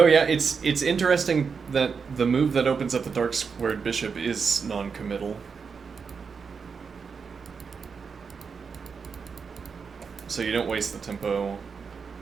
yeah, it's interesting that the move that opens up the dark squared bishop is non-committal. So you don't waste the tempo,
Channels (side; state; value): left; quieter; 5.7 dB